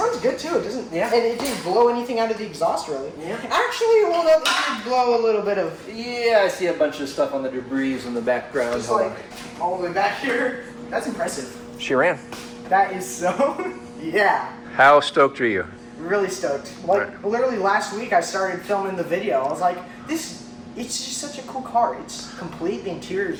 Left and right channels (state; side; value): identical; both; correlation 1.00